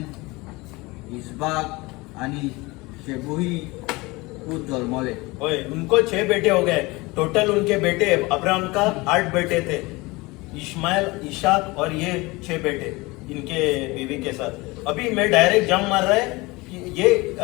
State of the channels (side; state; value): right; quieter; 23.2 dB